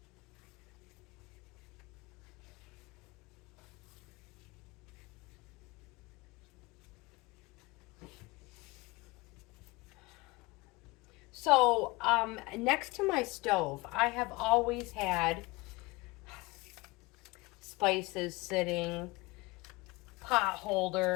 So, next to my stove, I have always had spices sitting, pot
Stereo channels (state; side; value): quieter; right; 23.3 dB